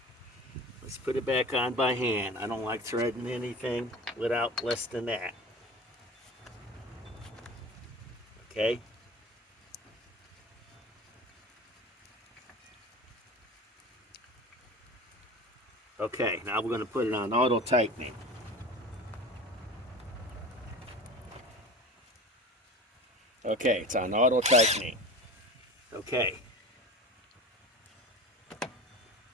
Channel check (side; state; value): both; normal; correlation 0.35